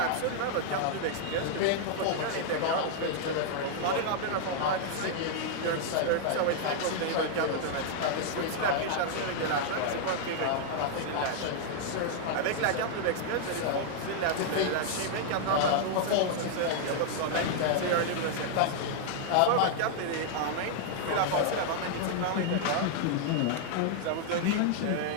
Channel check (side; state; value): both; different; correlation 0.00